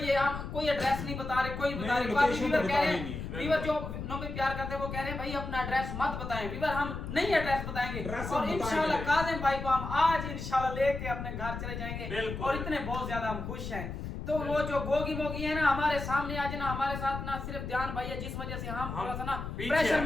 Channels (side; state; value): left; noise; rumble, 6 dB below the sound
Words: हम कोई एड्रेस नहीं बता रहे, कोई बता रहे। वीवर कह रहे हैं, वीवर जो नोमी प्यार करते हैं वो कह रहे हैं भाई अपना एड्रेस मत बताएं। वीवर हम नहीं एड्रेस बताएंगे और इंशाल्लाह काजिम भाई को हम आज इंशाल्लाह लेके अपने घर चले जाएंगे और इतने बहुत ज्यादा हम खुश हैं। तो वो जो गोगी मोगी है ना हमारे सामने आज ना हमारे साथ ना सिर्फ ध्यान भाई है, जिस वजह से हम थोड़ा सा ना प्रेशर